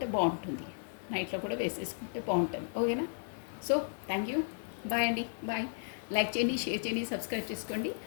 బాగుంటుంది. నైట్లో కూడా వేసేసుకుంటే బాగుంటుంది. ఓకేనా? So thank you. బాయ్ అండి. బాయ్. లైక్ చేయండి, షేర్ చేయండి, సబ్స్క్రైబ్ చేసుకోండి.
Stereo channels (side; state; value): right; silent; digital silence